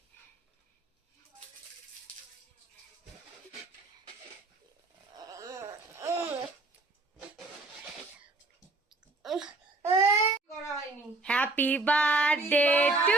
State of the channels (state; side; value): quieter; left; 3.1 dB